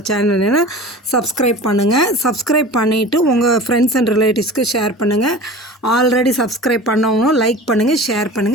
சேனல்னா சப்ஸ்கிரைப் பண்ணுங்கள். சப்ஸ்கிரைப் பண்ணிவிட்டு உங்கள் ஃப்ரெண்ட்ஸ் அண்ட் ரிலேட்டிவ்ஸ்க்கு ஷேர் பண்ணுங்கள். ஆல்ரெடி சப்ஸ்கிரைப் பண்ணவங்களும் லைக் பண்ணுங்கள், ஷேர்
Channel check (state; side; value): normal; both; correlation 0.37